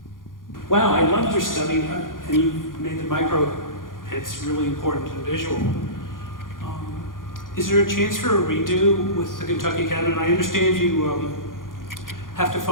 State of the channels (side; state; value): right; late; 0.90 ms